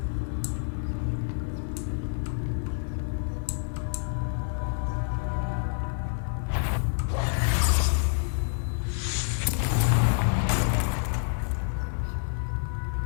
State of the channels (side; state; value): right; silent; 59 dB below the other